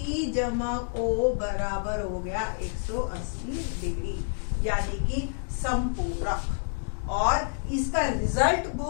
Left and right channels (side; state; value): right; silent; digital silence